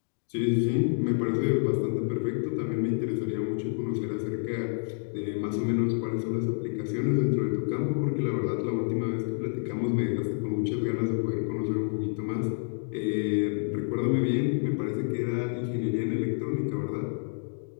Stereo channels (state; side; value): silent; right; digital silence